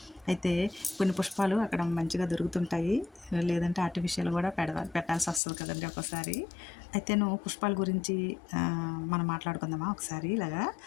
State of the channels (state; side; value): drops out; right; at 5.4 s